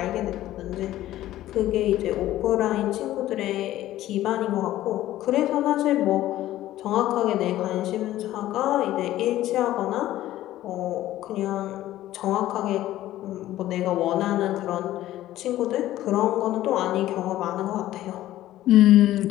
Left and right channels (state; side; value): quieter; right; 14.3 dB